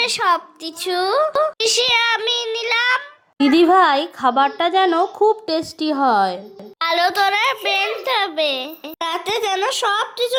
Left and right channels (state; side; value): identical; both; correlation 1.00